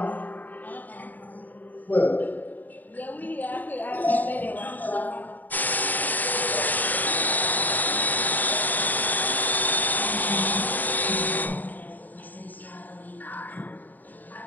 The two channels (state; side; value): late; right; 0.085 ms